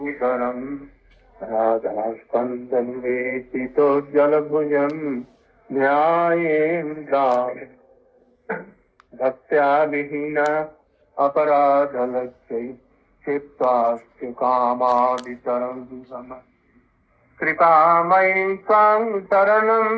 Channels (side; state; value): both; identical; correlation 1.00